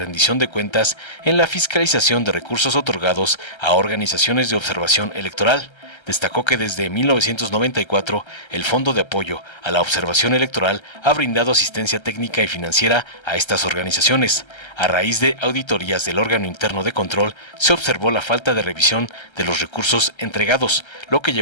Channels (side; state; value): right; late; 1.3 ms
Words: de cuentas en la fiscalización de recursos otorgados a organizaciones de observación electoral. Destacó que desde 1994 el Fondo de Apoyo a la Observación Electoral ha brindado asistencia técnica y financiera a estas organizaciones. A raíz de auditorías del órgano interno de control, se observó la falta de revisión de los recursos entregados, lo que